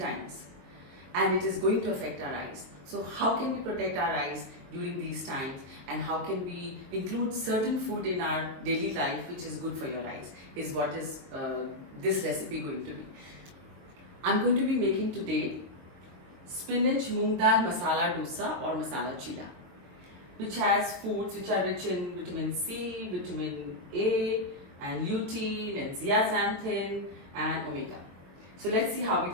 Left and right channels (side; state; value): left; late; 22 ms